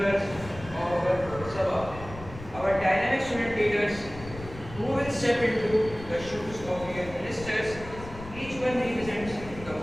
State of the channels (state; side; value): noise; left; rumble, 14 dB below the sound